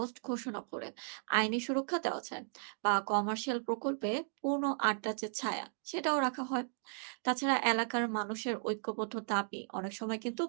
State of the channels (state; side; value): silent; left; digital silence